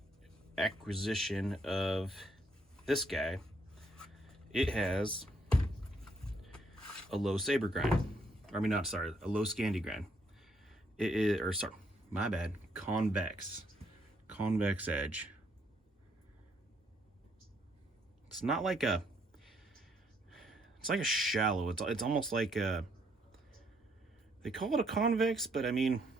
acquisition of this guy, it has a low saber grind. A low Scandi grind. It is, convex edge. It's not like a, it's like a shallow, it's almost like a, they call it a convex, but I mean,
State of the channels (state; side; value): normal; both; correlation 0.71